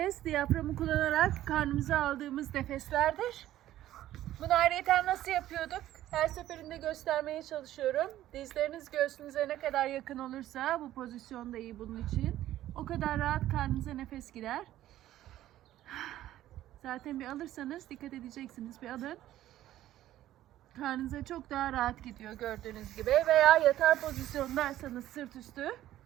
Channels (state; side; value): quieter; left; 13.6 dB